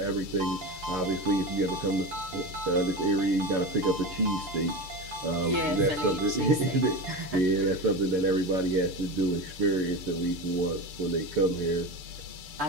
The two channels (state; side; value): late; left; 6.7 ms